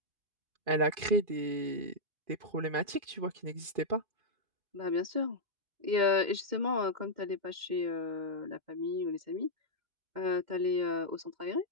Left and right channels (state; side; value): late; left; 2.4 ms